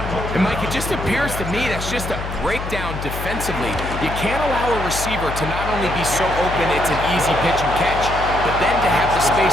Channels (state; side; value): noise; left; hum, 7 dB below the sound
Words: And Mike, it just appears to me that's just a breakdown defensively. You can't allow a receiver to not only be so open it's an easy pitch and catch, but then to have the